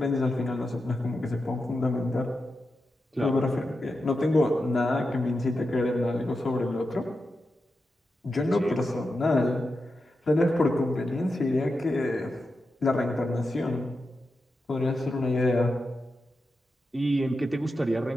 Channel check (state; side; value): normal; both; correlation 0.89